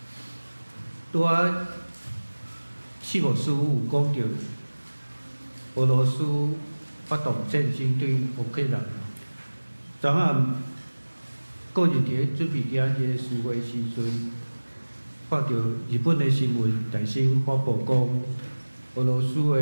拄仔四牧师有讲着，俄罗斯发动战争对乌克兰。昨暗个人伫准备今日聚会时阵，看到日本的新闻大新发布讲，俄罗斯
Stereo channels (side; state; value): both; inverted; correlation -1.00